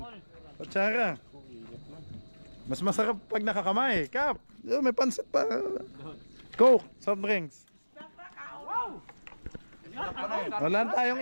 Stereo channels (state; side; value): inverted; both; correlation -1.00